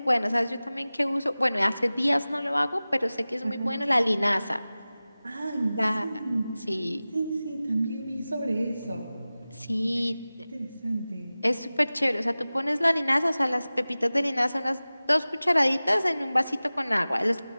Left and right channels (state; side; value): inverted; both; correlation -0.97